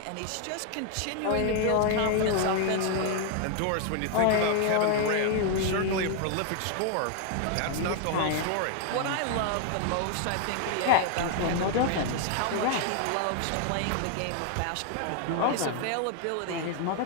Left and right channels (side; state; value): both; different; correlation 0.00